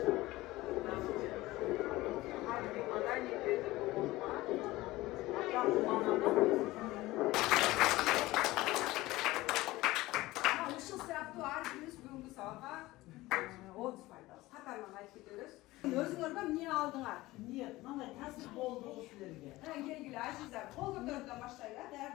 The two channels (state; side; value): quieter; right; 18.7 dB